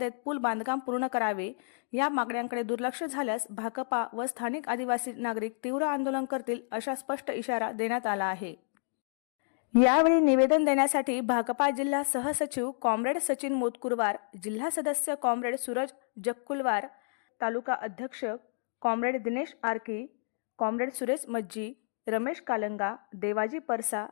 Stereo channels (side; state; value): right; silent; digital silence